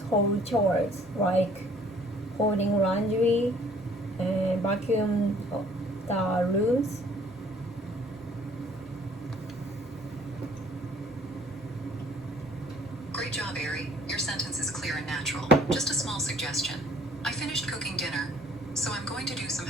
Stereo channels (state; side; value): normal; both; correlation 0.58